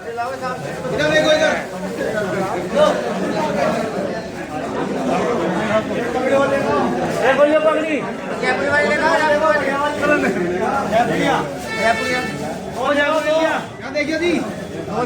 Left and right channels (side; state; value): both; identical; correlation 1.00